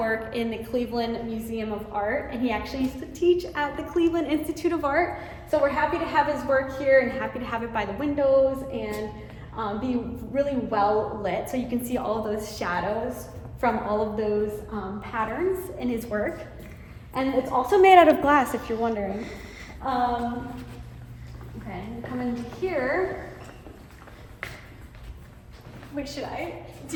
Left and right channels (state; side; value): identical; both; correlation 1.00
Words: in the Cleveland Museum of Art, and he actually used to teach at the Cleveland Institute of Art. So we're happy to have his work here and happy to have it by the windows and be really well lit, so you can see all of those shadows from all of those patterns in his work. And it's also made out of glass, if you're wondering. Okay, come into here. Wait, should I? Do